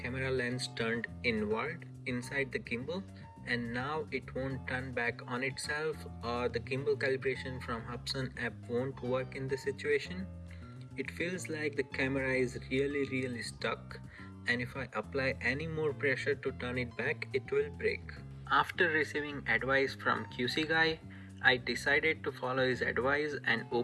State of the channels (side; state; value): both; identical; correlation 1.00